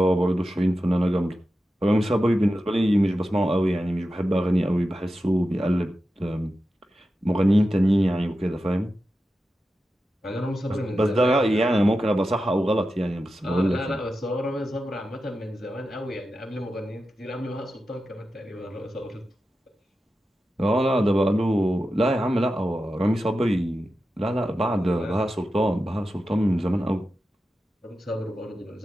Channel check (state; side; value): normal; both; correlation 0.91